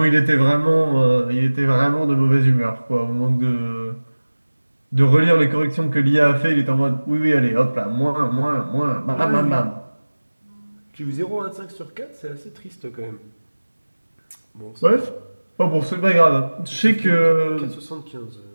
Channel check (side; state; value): both; inverted; correlation -1.00